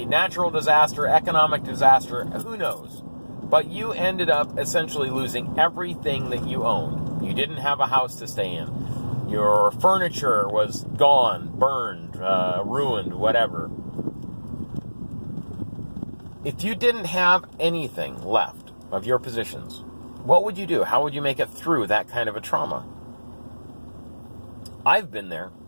natural disaster, economic disaster, who knows, but you ended up essentially losing everything that you owned. You didn't have a house to stay in. Your furniture was gone, burned, ruined, whatever. If you didn't have anything left of your possessions, what would you do? How would you make it through that kind of a trauma? I've been there.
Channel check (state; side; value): inverted; both; correlation -1.00